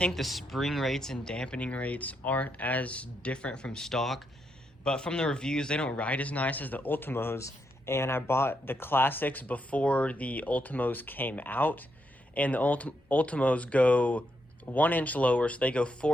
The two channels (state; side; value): normal; both; correlation 0.80